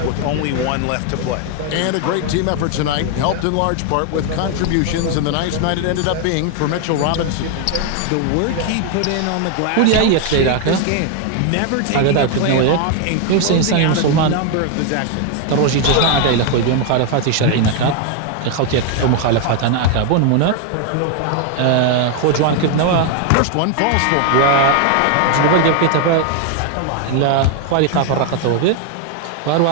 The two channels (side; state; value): both; different; correlation 0.01